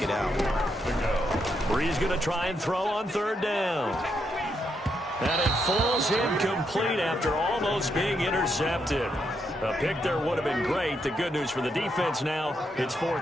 it out. Bree's going to try and throw on third down. And it falls incomplete after almost being intercepted. A pick there would have been great. The good news for the defense now, it's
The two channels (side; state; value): both; normal; correlation 0.80